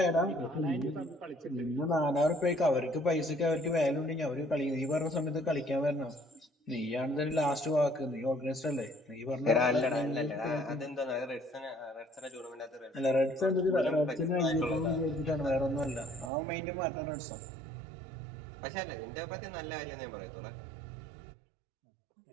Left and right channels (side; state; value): left; drops out; at 16.3 s